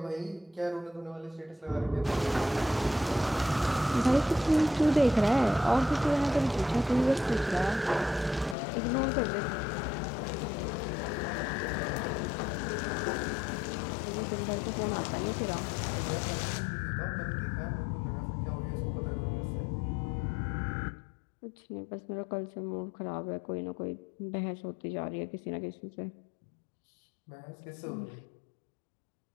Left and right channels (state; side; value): drops out; right; at 8.6 s